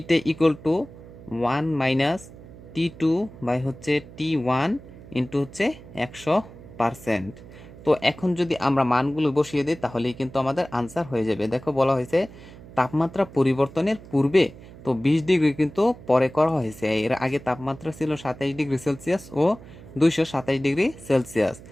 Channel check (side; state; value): right; noise; hum, 18 dB below the sound